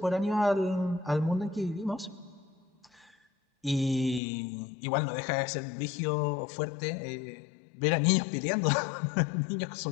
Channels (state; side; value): drops out; right; at 4.2 s